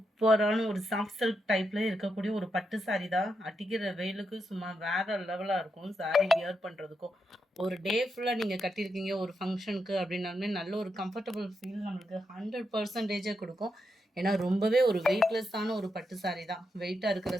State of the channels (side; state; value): both; normal; correlation 0.84